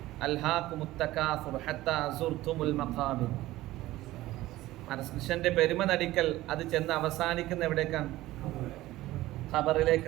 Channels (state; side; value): quieter; left; 16.7 dB